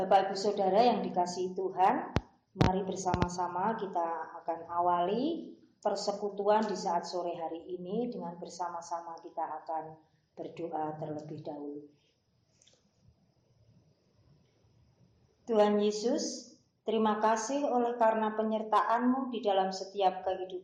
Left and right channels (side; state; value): both; identical; correlation 1.00